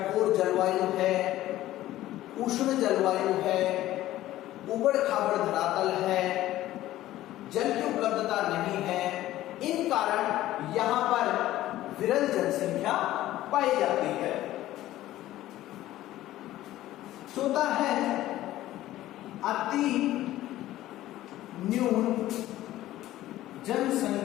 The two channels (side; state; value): right; quieter; 14.8 dB